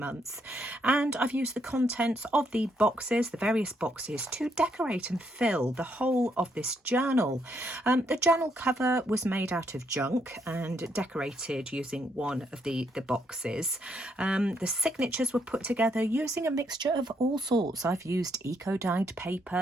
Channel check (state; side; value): normal; both; correlation 0.74